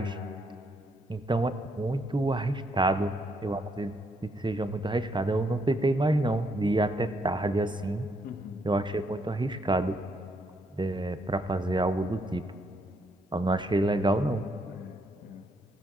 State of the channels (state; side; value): normal; both; correlation 0.73